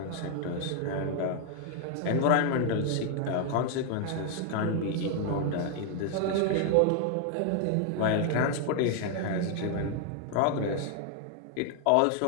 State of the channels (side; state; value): both; different; correlation 0.00